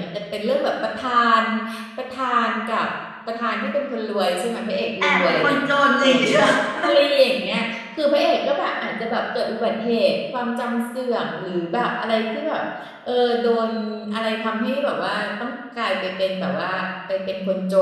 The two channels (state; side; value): identical; both; correlation 1.00